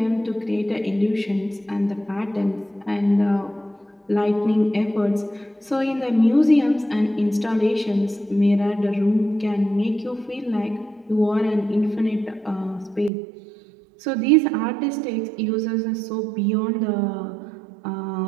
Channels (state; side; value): drops out; left; at 13.1 s